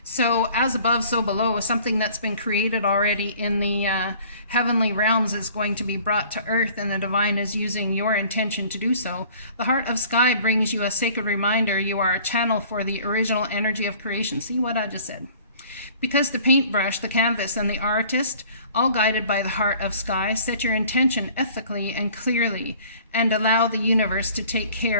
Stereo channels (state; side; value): inverted; both; correlation -0.51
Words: So as above, so below, something that's been created already in the heavenly realms is going to be brought to earth, and the divine is using your intention to do so. The Heart of Sky brings you a sacred reminder you are a channel for the original energy of creation. See what I just said? Because the paintbrush, the canvas, and the artist, all guided by the Heart of Sky, set your intention ethically and clearly and allow the universe to take